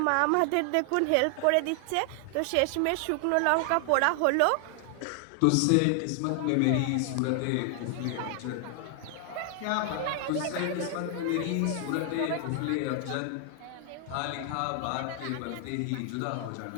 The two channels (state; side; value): different; both; correlation 0.00